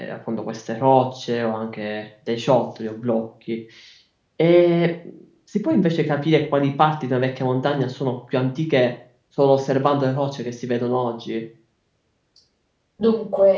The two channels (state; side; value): identical; both; correlation 1.00